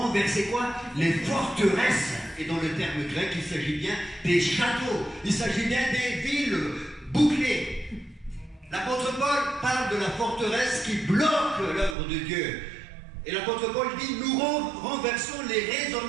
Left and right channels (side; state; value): left; drops out; at 12.0 s